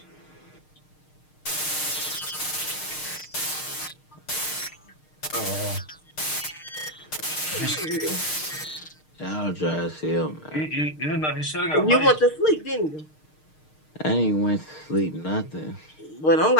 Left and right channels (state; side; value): late; right; 6.5 ms